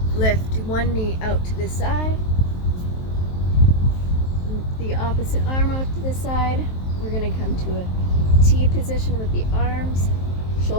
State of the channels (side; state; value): right; late; 23 ms